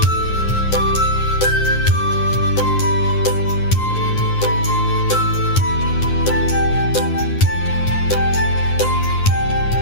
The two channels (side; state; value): right; late; 9.7 ms